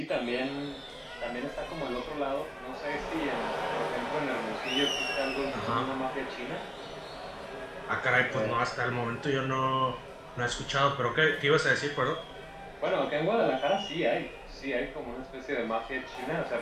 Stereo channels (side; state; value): both; identical; correlation 1.00